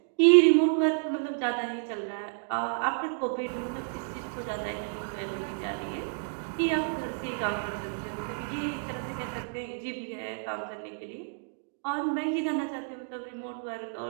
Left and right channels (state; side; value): silent; left; 58 dB below the other